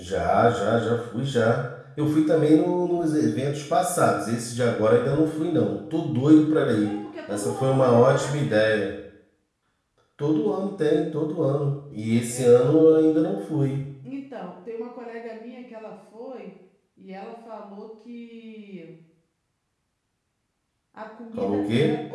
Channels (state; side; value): identical; both; correlation 1.00